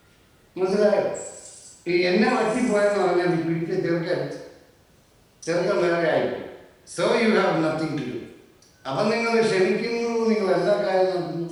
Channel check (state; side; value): identical; both; correlation 1.00